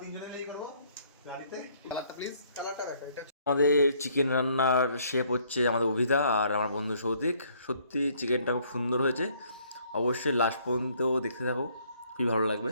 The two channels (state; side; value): inverted; both; correlation -0.64